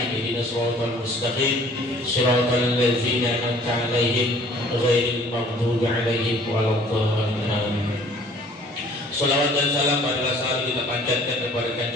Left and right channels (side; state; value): both; normal; correlation 0.54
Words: Ihdinas siratal mustaqim. Shiratal ladzina an'amta 'alaihim ghairil maghdubi 'alaihim waladdallin. Salawat dan salam adalah selalu kita panjatkan kepada